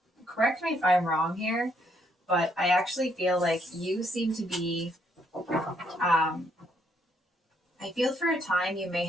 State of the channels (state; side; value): normal; both; correlation 0.72